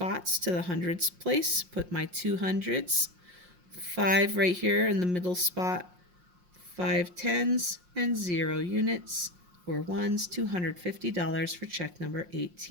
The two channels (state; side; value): late; left; 5.6 ms